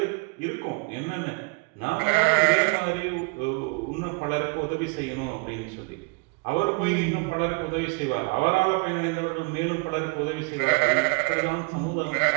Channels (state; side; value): quieter; left; 31.8 dB